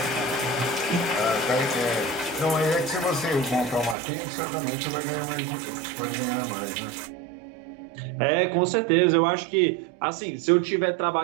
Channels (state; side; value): drops out; left; at 4.0 s